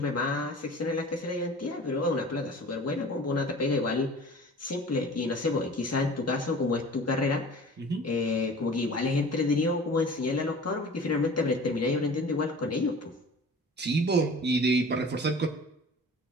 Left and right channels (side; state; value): both; normal; correlation 0.42